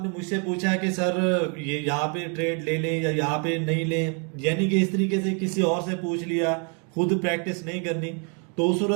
मुझसे पूछा है कि सर ये यहाँ पे ट्रेड ले लें या यहाँ पे नहीं लें, यानी कि इस तरीके से किसी और से पूछ लिया, खुद प्रैक्टिस नहीं करनी, तो उस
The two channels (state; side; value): quieter; left; 37.7 dB